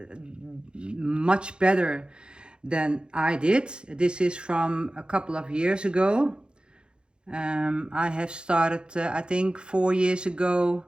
much better than I did. This is from a couple of years ago. I have started I think 4 years ago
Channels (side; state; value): left; late; 0.051 ms